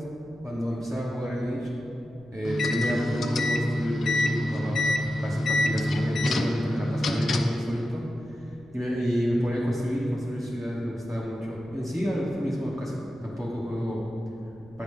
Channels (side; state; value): left; noise; rumble, 23 dB below the sound